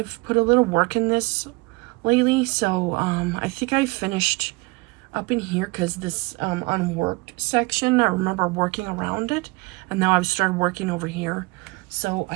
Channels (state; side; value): quieter; left; 25.0 dB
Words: put a little work in this lately, so I think I finished up in here, because this unworked section, I remember working around it, and now I've started working over here. So